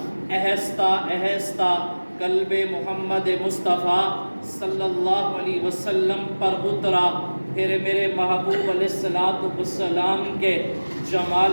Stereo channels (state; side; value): inverted; both; correlation -1.00